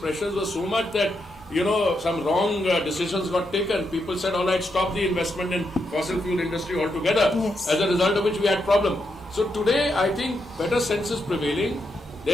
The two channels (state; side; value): normal; both; correlation 0.82